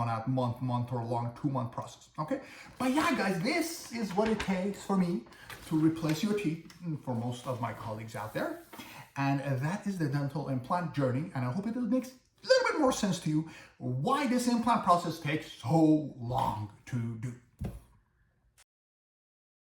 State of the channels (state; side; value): identical; both; correlation 1.00